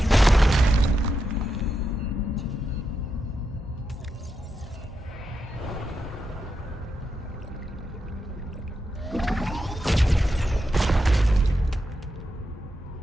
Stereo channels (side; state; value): both; normal; correlation 0.86